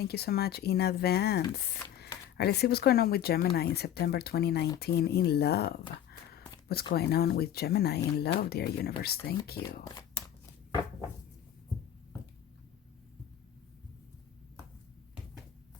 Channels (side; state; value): right; quieter; 10.7 dB